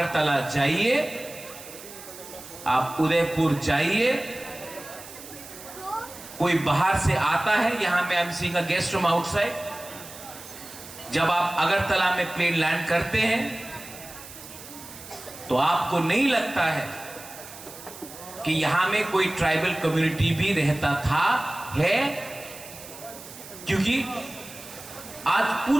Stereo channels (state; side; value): noise; right; hiss, 15 dB below the sound